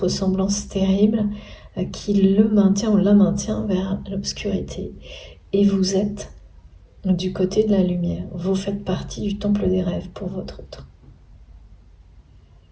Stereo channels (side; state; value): both; identical; correlation 1.00